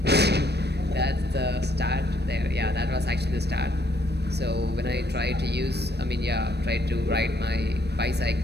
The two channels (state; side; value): late; left; 0.48 ms